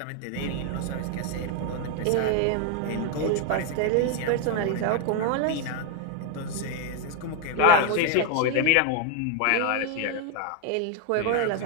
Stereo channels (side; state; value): both; different; correlation 0.01